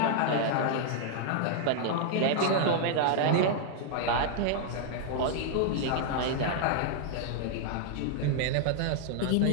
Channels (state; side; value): different; both; correlation -0.01